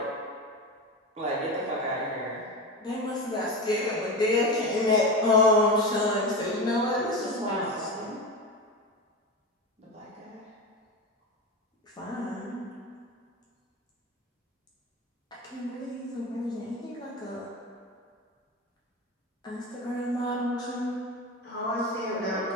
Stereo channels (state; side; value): normal; both; correlation 0.23